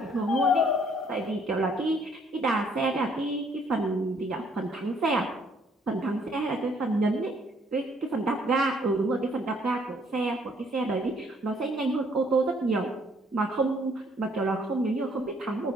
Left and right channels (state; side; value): normal; both; correlation 0.64